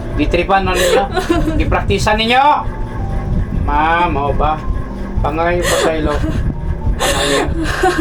na ninyo. Gipraktisan ninyo. Mao ba? Pangay pasaylo.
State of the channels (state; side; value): identical; both; correlation 1.00